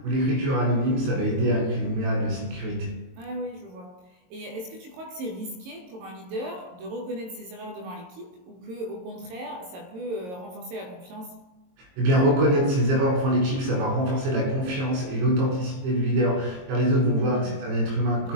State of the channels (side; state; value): left; late; 22 ms